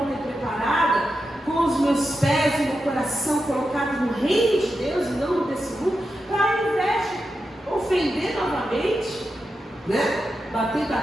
e preparada, com os meus pés e meu coração colocados no reino de Deus e não desse mundo, para ao invés de ofender novamente, né? Bater,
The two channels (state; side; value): normal; both; correlation 0.89